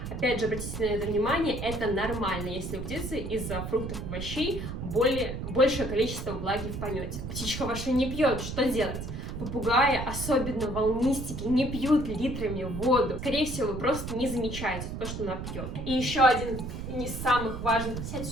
Опять же, обратите на это внимание, это нормально, если у птицы из-за фруктов и овощей большее количество влаги в помете. Птичка ваша не пьет, что делать? Попугаи, особенно волнистики, не пьют литрами воду. Скорее всего, вы просто не замечаете то, что она пьет. И еще один из самых важных... Сядь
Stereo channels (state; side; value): noise; right; rumble, 6 dB below the sound